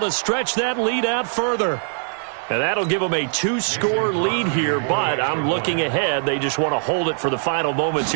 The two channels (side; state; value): left; silent; 56 dB below the other